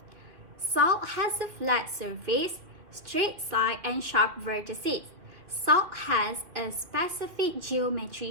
Salt has a flat surface, straight side and sharp vertices. Salt has a specific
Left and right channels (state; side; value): late; left; 2.5 ms